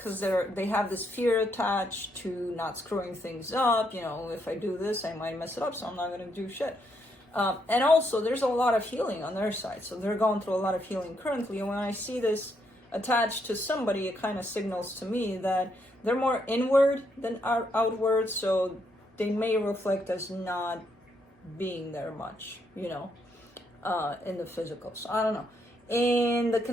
they have this fear attached to not screwing things up. You know, if I do this, I might mess it up, so I'm not going to do shit. And also, there's a lot of healing on their side. So they're going through a lot of healing currently. And when I see this attached to somebody, it kind of signals to me that they're more inward than outward. So they may reflect as not being there much, you know, in the physical. So I don't know. In the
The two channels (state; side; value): normal; both; correlation 0.76